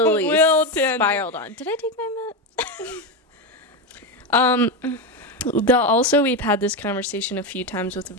Will tangent. spiraled on. Did I take my Also, we've had this conversation a few times with a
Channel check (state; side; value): normal; both; correlation 0.13